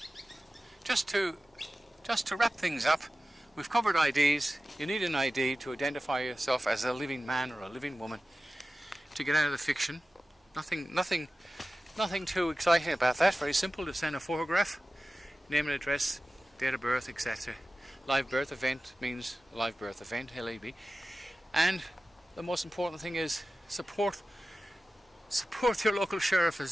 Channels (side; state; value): both; normal; correlation 0.95